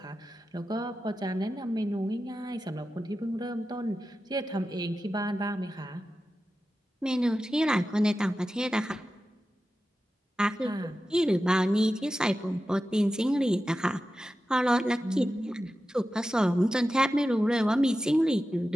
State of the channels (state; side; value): normal; both; correlation 0.93